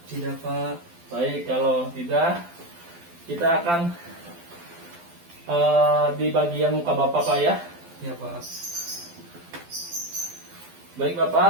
tidak Pak. Baik, kalau tidak kita akan di bagian muka Bapak Pak ya. Ya Pak. Baik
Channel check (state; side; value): late; left; 12 ms